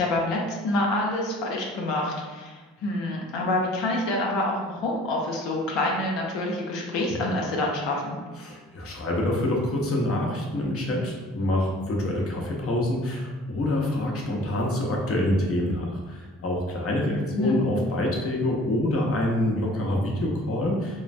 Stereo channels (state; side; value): normal; both; correlation 0.51